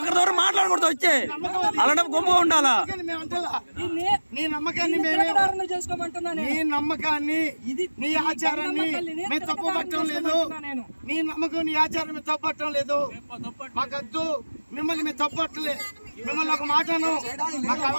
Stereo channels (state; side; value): inverted; both; correlation -1.00